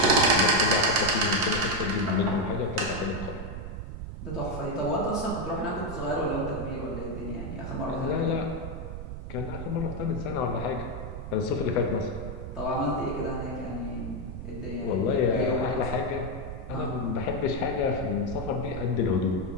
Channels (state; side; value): noise; right; rumble, 8 dB below the sound